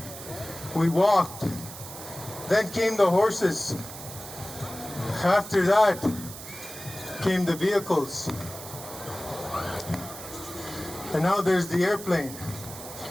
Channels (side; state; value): right; noise; hiss, 12 dB below the sound